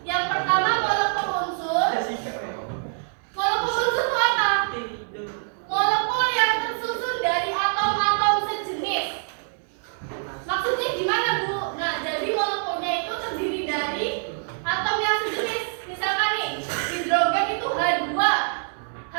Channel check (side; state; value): left; silent; digital silence